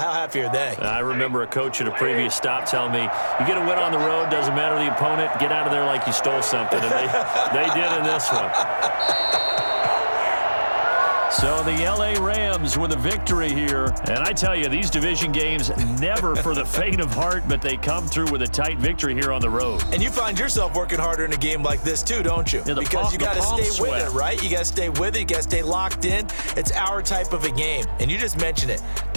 are they? I remember a coach at a previous stop telling me, you get a win on the road, doesn't matter the opponent, get out of there like you stole something, and they did in this one. So the L.A. Rams with a victory here. And I tell you, these division games, never for the faint of heart, but they come through with a tight victory here on the road. And you find yourself working harder in a game like this too, don't you? Yeah, because you got to stay with it, right? You got to stay with it. You got to stay locked in. It's our type of a game. And you just mentioned it.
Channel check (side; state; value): both; inverted; correlation -1.00